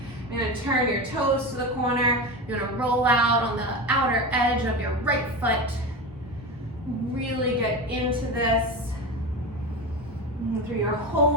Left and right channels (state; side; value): normal; both; correlation 0.22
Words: You're gonna turn your toes to the corner. You're gonna roll out on the outer edge of your right foot. Really get into this. Through your